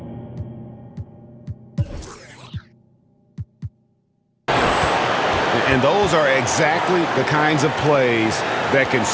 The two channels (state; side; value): identical; both; correlation 1.00